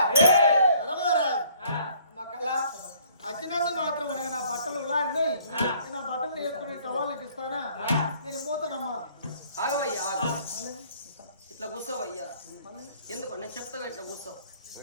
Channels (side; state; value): both; inverted; correlation -0.59